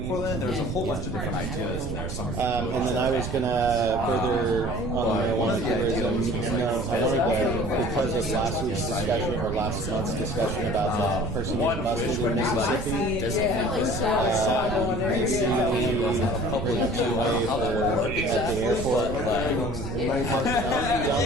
Portland, there's a whole bunch of different ideas in there. And then I was gonna further on the marijuana tourism. I wanted to, because of last week's discussion or last month's discussion about that person getting busted in Mississippi. Public giveaway at the airport.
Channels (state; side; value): noise; right; rumble, 6 dB below the sound